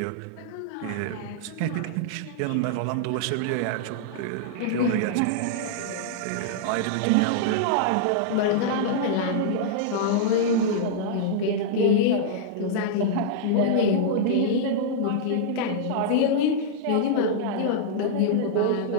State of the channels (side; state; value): both; different; correlation -0.02